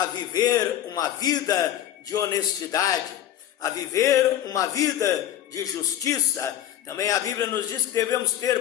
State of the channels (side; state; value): right; quieter; 11.8 dB